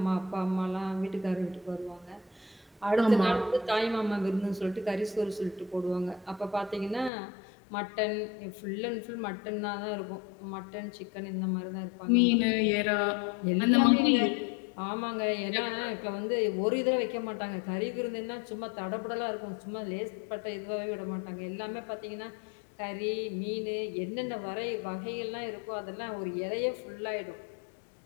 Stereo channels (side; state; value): right; drops out; at 7.1 s